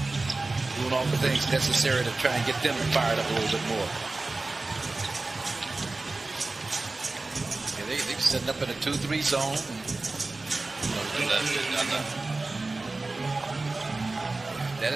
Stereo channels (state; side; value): quieter; left; 3.3 dB